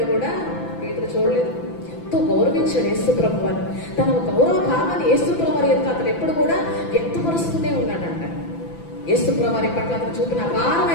కూడా పేతురు చూడలేదు. ఎంతో గౌరవించాడు యేసుప్రభు వారు. తన గౌరవ భావాన్ని యేసుప్రభు వారి యొక్క అతను ఎప్పుడు కూడా వ్యక్తపరుస్తూనే ఉన్నాడంట. యేసుప్రభు వారి పట్ల అతను చూపిన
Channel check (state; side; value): late; right; 5.9 ms